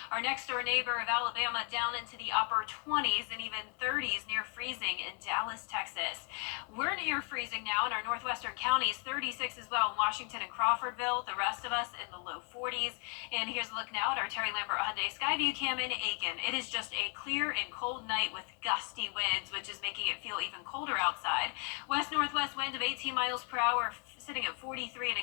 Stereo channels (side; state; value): right; quieter; 39.5 dB